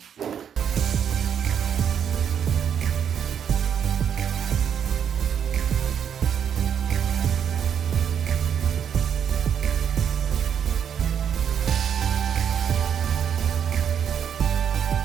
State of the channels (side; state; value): left; quieter; 8.3 dB